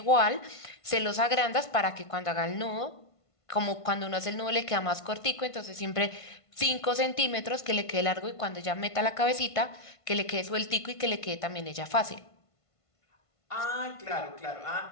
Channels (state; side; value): late; right; 1.5 ms